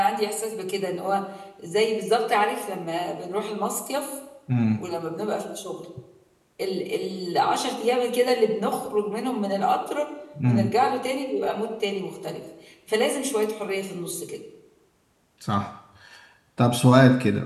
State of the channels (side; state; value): both; identical; correlation 1.00